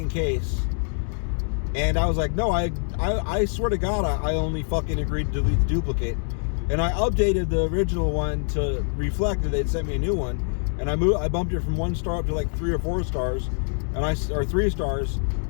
case. And I was like, no, I swear to God, I only fucking agreed to delete the duplicate. And I updated the original one to reflect that they'd sent me a new one. And I bumped it from 1 star up to like 3 or 4 stars. Or 3 stars.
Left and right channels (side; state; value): right; silent; 62 dB below the other